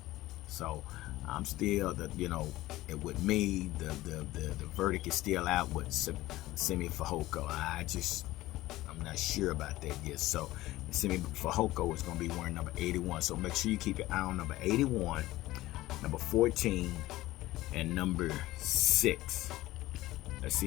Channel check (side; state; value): right; quieter; 17.0 dB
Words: So I'm still with me, the verdict is still out with Simi Fehoko. I'm not sure about that yet. So Simi Fehoko is going to be wearing number 81. So make sure you keep your eye on number 81, number 14, and number 6. Let's